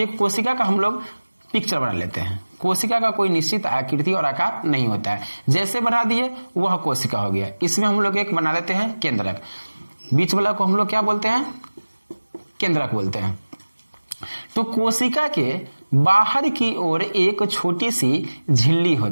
कोशिका का हम लोग पिक्चर बना लेते हैं। कोशिका का कोई निश्चित आकृति और आकार नहीं होता है, जैसे बना दिए वह कोशिका हो गया। इसमें हम लोग एक बना लेते हैं केंद्रक। बीच वाला को हम लोग क्या बोलते हैं? केंद्रक बोलते हैं। तो कोशिका के बाहर की ओर एक छोटी सी झिल्ली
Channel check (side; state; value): both; inverted; correlation -1.00